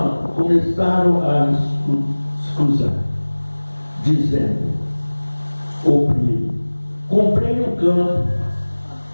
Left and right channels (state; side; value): inverted; both; correlation -1.00